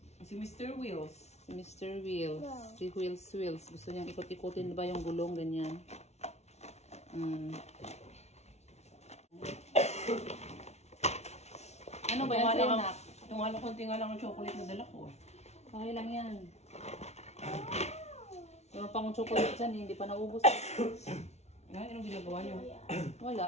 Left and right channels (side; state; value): right; late; 0.32 ms